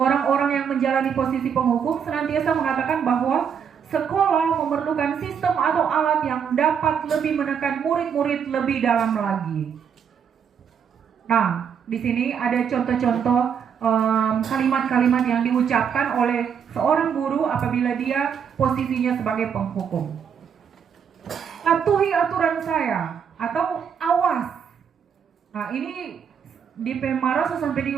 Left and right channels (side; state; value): left; quieter; 7.4 dB